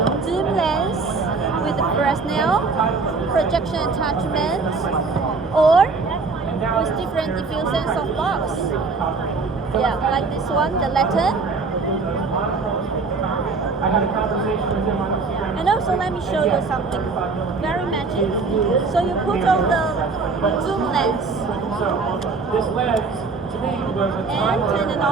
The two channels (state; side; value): quieter; left; 4.3 dB